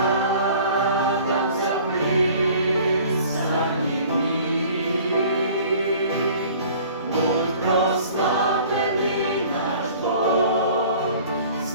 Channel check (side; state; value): both; inverted; correlation -0.49